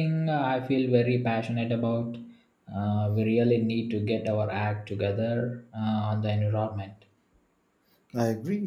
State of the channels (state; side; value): identical; both; correlation 1.00